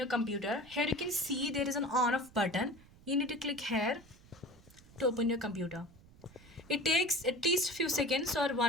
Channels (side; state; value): right; noise; rumble, 24 dB below the sound